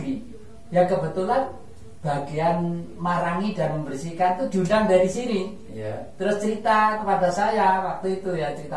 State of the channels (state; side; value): identical; both; correlation 1.00